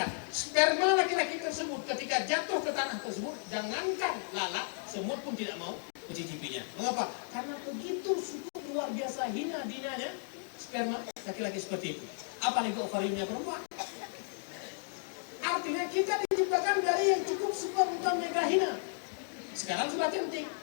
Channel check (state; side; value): silent; right; 55 dB below the other